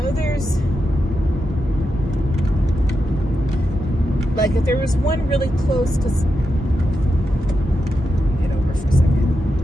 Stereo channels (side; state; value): both; normal; correlation 0.87